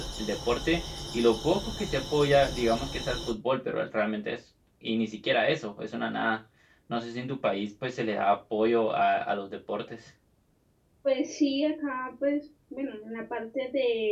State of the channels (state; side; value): identical; both; correlation 1.00